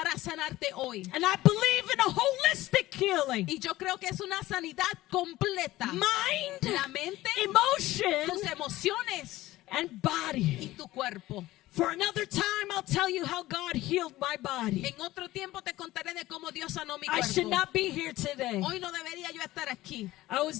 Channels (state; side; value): quieter; right; 16.8 dB